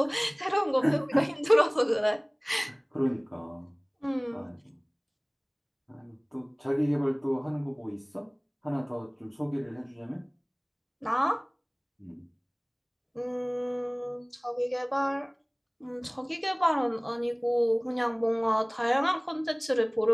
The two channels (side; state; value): both; identical; correlation 1.00